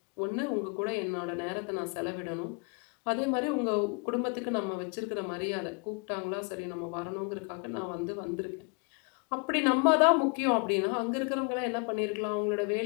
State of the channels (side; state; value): right; quieter; 34.4 dB